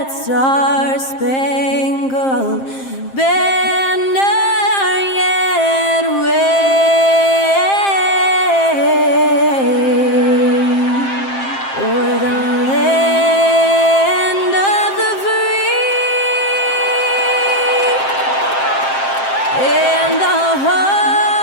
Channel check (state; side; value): late; right; 7.6 ms